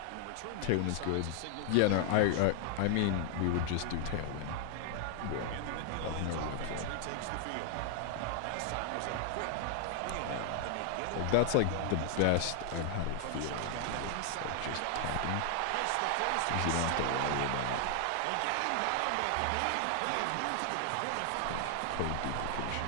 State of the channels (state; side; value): different; both; correlation 0.00